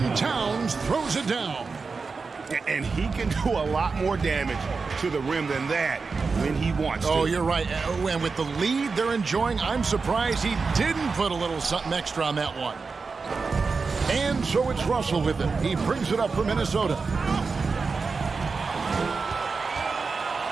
Towns throws it down. And he can do a lot more damage to the rim than that when he wants to. Oh, you're right. And with the lead they're enjoying, I'm surprised he didn't put a little something extra on that one. And so it's Russell with it. He brings it up for Minnesota.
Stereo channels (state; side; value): quieter; left; 4.6 dB